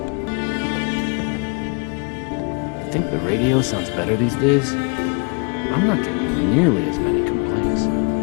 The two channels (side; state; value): right; quieter; 33.9 dB